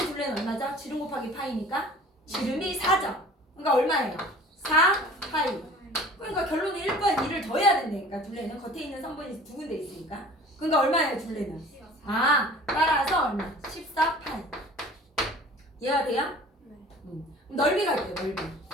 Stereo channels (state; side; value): normal; both; correlation 0.45